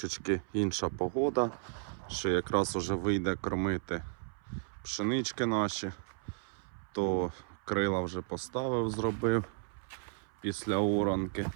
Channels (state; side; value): silent; left; 55 dB below the other